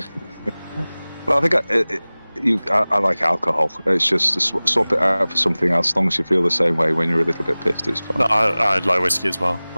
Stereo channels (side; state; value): both; inverted; correlation -0.99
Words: Well, I think I like alcohol. It's just swap it out for something else. As long as you feel the same way when you're a little bit pissed, it's fine. No, I like whiskey as well.